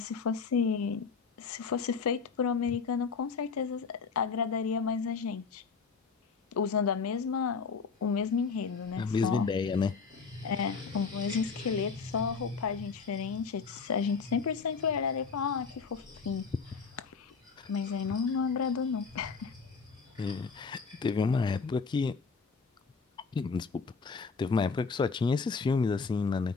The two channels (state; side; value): quieter; right; 5.1 dB